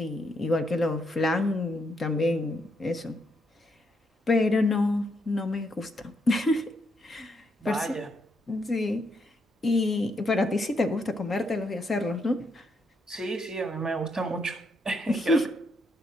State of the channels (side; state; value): both; normal; correlation 0.77